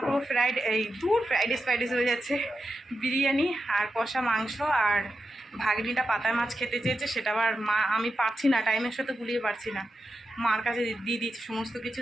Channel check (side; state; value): both; normal; correlation 0.89